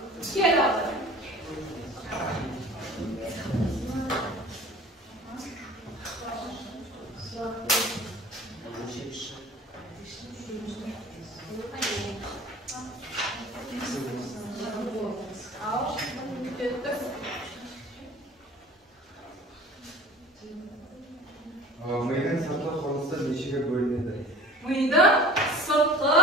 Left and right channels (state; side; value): normal; both; correlation 0.44